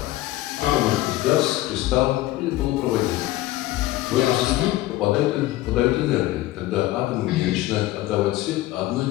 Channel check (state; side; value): quieter; right; 16.5 dB